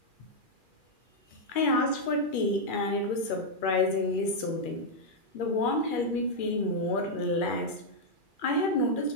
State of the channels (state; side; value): late; right; 2.4 ms